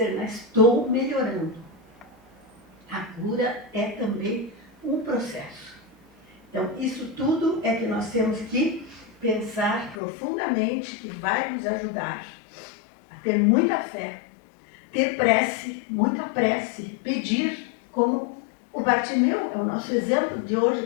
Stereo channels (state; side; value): drops out; right; at 10.0 s